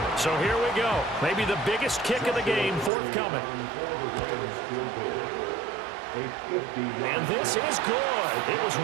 So here we go. Maybe the biggest kick of the game forthcoming. And this is good. It was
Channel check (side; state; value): left; drops out; at 2.9 s